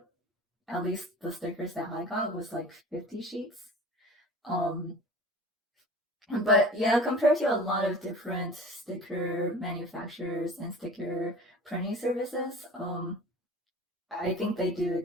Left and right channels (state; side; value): normal; both; correlation 0.41